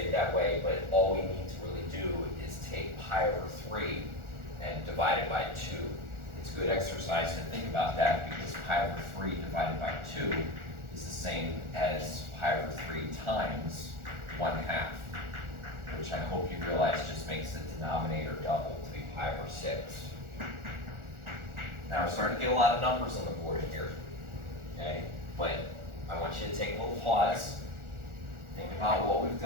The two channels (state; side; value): late; left; 1.4 ms